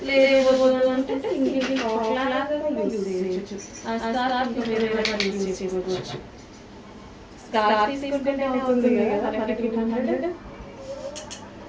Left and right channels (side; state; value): both; identical; correlation 1.00